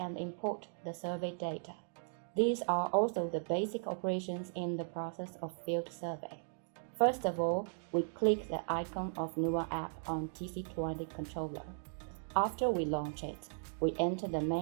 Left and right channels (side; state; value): left; silent; digital silence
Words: import the survey data. These are also the basic operations in the process of field survey. First of all, we click the icon of Nuwa app on TC20 controller. After we launch it, we enter the